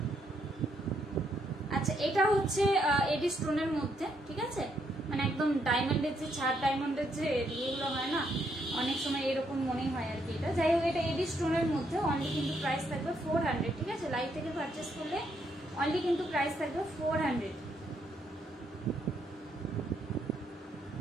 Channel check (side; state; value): both; normal; correlation 0.75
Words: আচ্ছা এটা হচ্ছে এডি স্টোনের মধ্যে, ঠিক আছে? মানে একদম ডায়মন্ডের যে ছাড়, ডায়মন্ডের যে ইয়েগুলো হয় না, অনেক সময় এরকম মনে হয় আর কি। এটা যাই হোক, এটা এডি স্টোনের মধ্যে অনলি কিন্তু প্রাইস থাকবে 400, ঠিক আছে? লাইভ থেকে পারচেস করলে অনলি কিন্তু প্রাইস থাকবে 400।